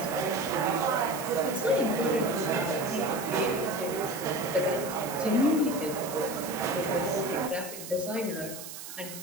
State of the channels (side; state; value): right; noise; hiss, 11 dB below the sound